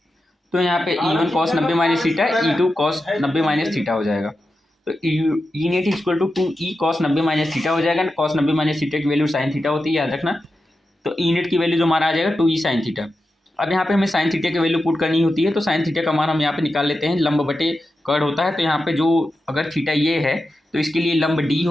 तो यहाँ पे E1 cos 90 - theta, E2 cos 90 - theta हो जाएगा। तो E net = 2E cos 90 - theta हो जाएगा। cos 90 - थीटा की वैल्यू sin थीटा होती है, याद रखना। तो E नेट की वैल्यू जो हमारा आ जाएगा 2E sin थीटा। अब यहाँ पे हमें sin थीटा की वैल्यू पुट करनी होती है, तो sin थीटा का मान हम यहाँ पे निकाल लेते हैं। लंब बटे कर्ण होता है, तो यहाँ पे जो अगर थीटा ये है तो इसके लिए लंब D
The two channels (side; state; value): both; normal; correlation 0.90